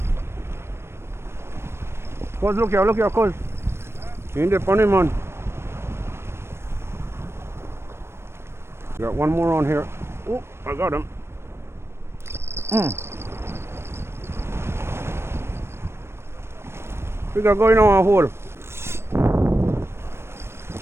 Cuz, look here, cuz. You in the funny, man. Got one more on here. Oh, I got him. We got going on a hole.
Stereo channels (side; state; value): left; late; 0.12 ms